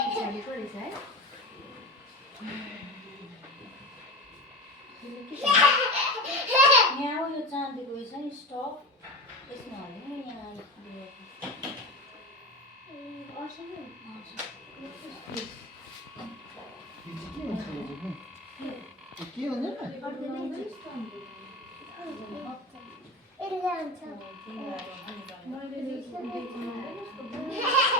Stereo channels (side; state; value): both; normal; correlation 0.25